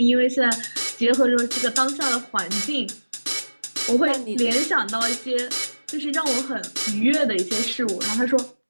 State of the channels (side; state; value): both; inverted; correlation -1.00